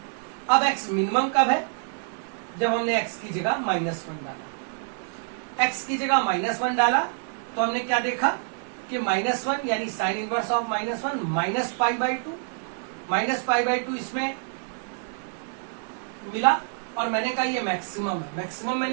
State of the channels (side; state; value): left; silent; digital silence